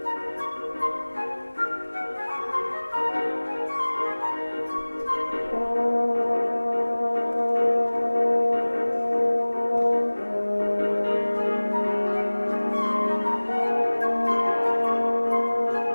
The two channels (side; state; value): both; inverted; correlation -1.00